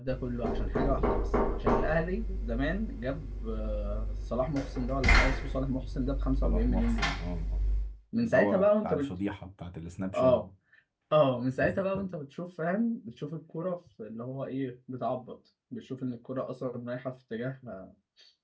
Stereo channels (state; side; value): identical; both; correlation 1.00